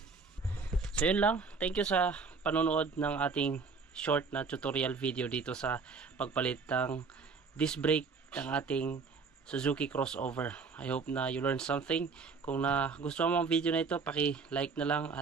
So yun lang, thank you sa panonood ng ating short na tutorial video dito sa pagpalit ng disc brake ng ating Suzuki crossover. I hope na you learned something. Kung gusto mo ang video na ito, paki-like na lang,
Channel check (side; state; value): left; quieter; 4.8 dB